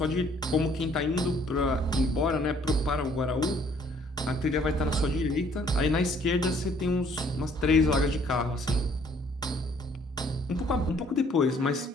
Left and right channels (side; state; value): both; normal; correlation 0.61